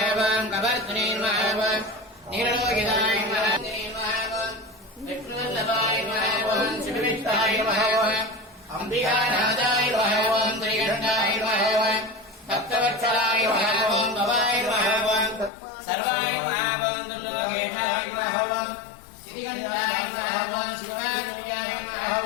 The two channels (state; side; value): drops out; right; at 15.5 s